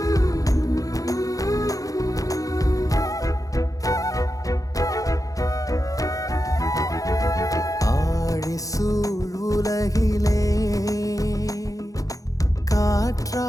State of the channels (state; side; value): late; right; 0.17 ms